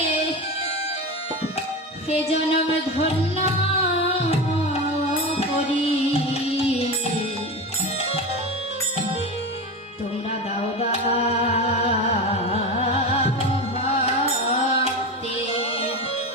হে জনম ধন্য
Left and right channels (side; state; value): both; normal; correlation 0.23